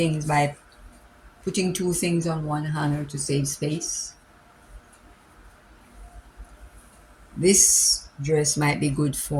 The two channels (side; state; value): both; identical; correlation 1.00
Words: by putting two things on one hanger to save space. This dress might be good